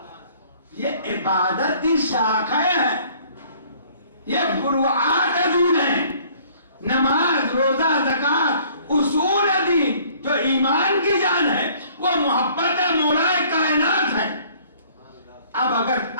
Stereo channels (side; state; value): both; inverted; correlation -0.56